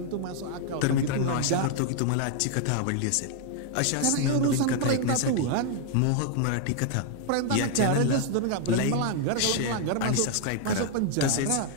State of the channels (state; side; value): different; both; correlation 0.00